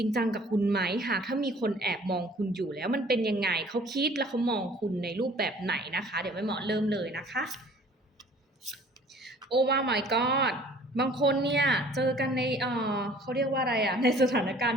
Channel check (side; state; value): both; normal; correlation 0.52